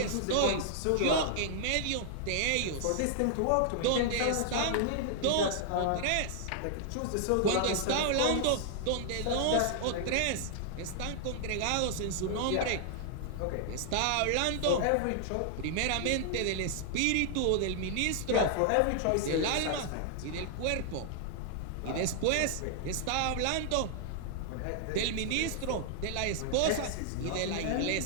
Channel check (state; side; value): different; both; correlation -0.01